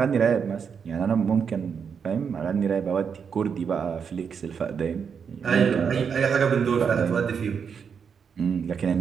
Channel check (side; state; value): left; quieter; 6.6 dB